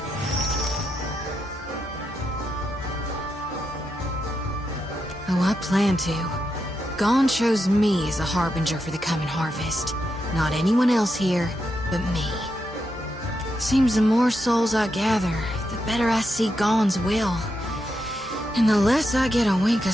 Oh, I plan to. Gon chose me as a harbinger for the coming harvest. Not anyone else here, but me. Seems the more souls I gather, the better I see Gon's will. And the less I get a wink of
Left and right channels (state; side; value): normal; both; correlation 0.84